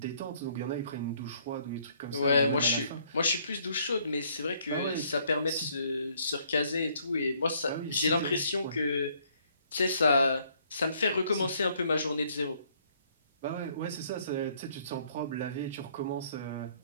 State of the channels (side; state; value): both; inverted; correlation -0.65